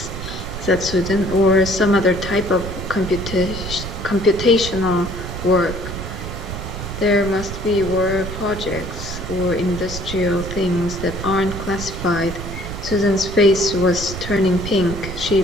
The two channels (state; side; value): noise; right; rumble, 8 dB below the sound